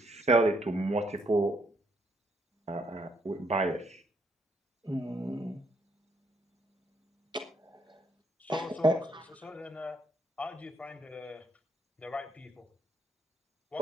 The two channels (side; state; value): both; normal; correlation 0.72